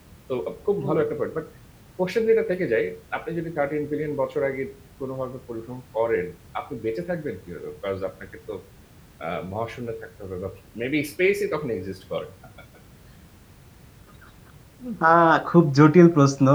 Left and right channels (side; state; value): both; identical; correlation 1.00